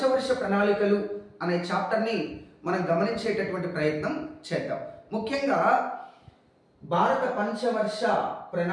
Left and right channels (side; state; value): both; identical; correlation 1.00